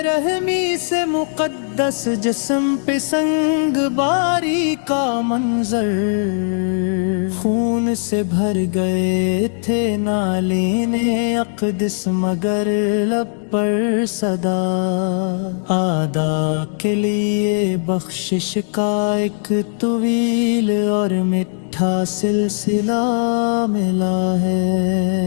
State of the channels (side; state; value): right; silent; digital silence